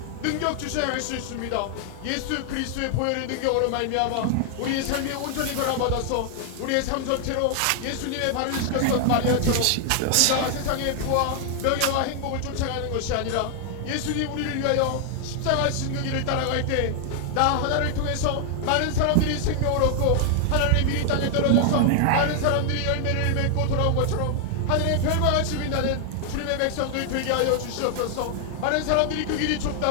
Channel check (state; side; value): different; both; correlation 0.00